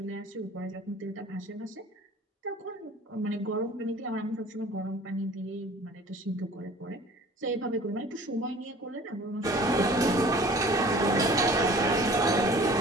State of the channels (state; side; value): normal; both; correlation 0.47